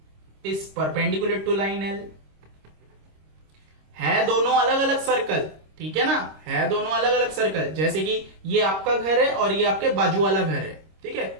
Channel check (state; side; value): late; left; 26 ms